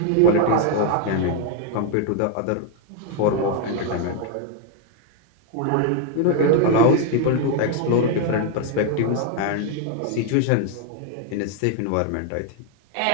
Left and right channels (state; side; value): different; both; correlation 0.00